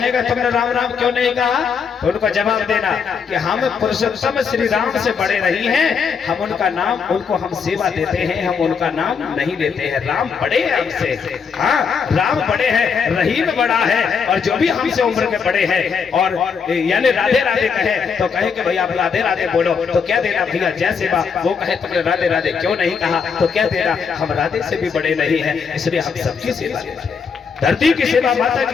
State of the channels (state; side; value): quieter; right; 6.1 dB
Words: तुमने राम राम क्यों नहीं कहा, तो उनको जवाब देना कि हम पुरुषोत्तम श्री राम से बड़े नहीं हैं, हम उनका नाम, उनको हम सेवा देते हैं, हम उनका नाम नहीं लेते हैं। राम बड़े हैं हमसे, हाँ राम बड़े हैं, रहीम बड़ा है, और जो भी हमसे उम्र के बड़े हैं और यानी राधे राधे कहे तो कहे कि भैया आप राधे राधे बोलो, तो क्या देना भैया जय सेवा, वो कहे तुमने राधे राधे क्यों नहीं कहा, तो क्या देना, हम राधे से भी बड़े नहीं हैं, इसलिए हम सबकी सेवा देते हैं। धरती की सेवा, माता